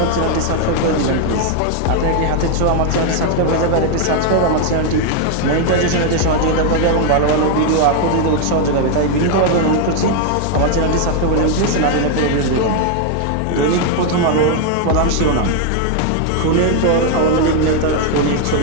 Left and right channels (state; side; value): different; both; correlation 0.01